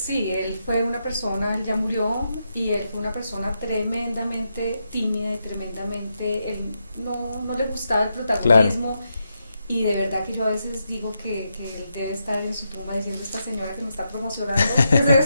él fue una persona, él ya murió, y él fue una persona tremendamente tímida y tremendamente, él no le gustaba el protagonismo. Claro. Y de verdad que yo a veces digo que él debe estar en su tumba diciendo, esta señora que me está promocionando, ¿qué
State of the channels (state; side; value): inverted; both; correlation -0.84